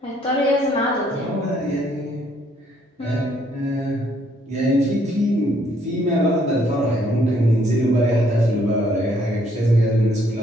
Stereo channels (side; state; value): both; normal; correlation 0.67